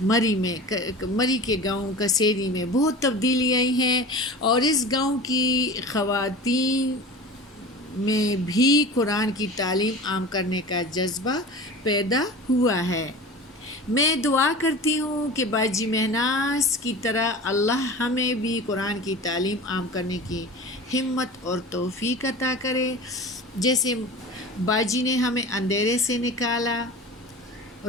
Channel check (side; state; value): both; normal; correlation 0.35